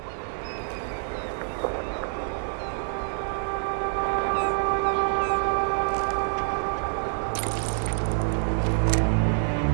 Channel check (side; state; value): left; silent; digital silence